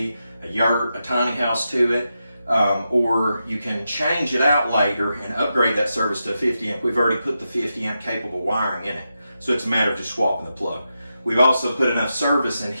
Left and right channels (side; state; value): both; inverted; correlation -0.87